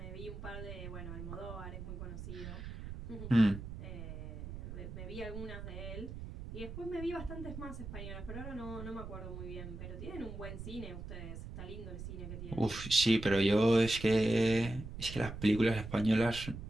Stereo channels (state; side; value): noise; right; rumble, 9 dB below the sound